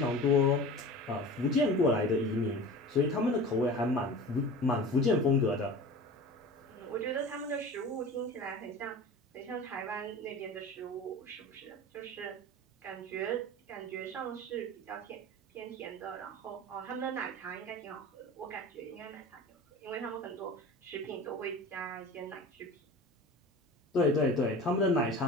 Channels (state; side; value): normal; both; correlation 0.36